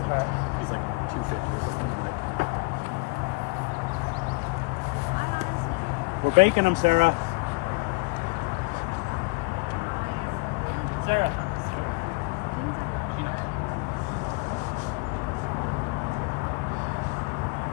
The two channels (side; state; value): right; quieter; 28.2 dB